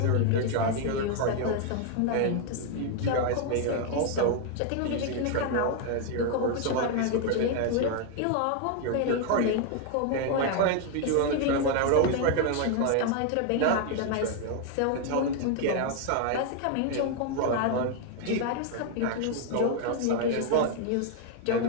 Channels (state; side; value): different; both; correlation 0.01